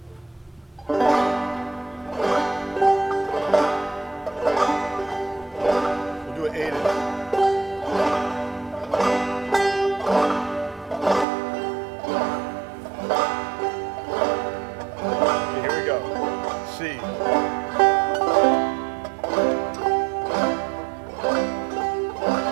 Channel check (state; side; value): drops out; left; at 11.2 s